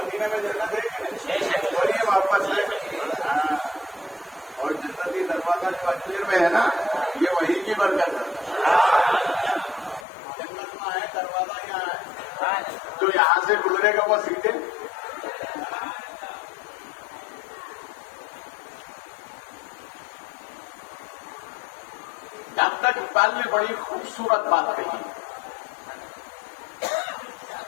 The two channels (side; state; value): right; drops out; at 10.1 s